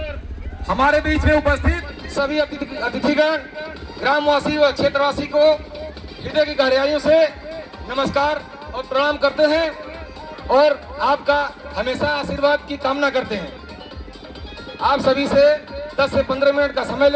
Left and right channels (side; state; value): both; identical; correlation 1.00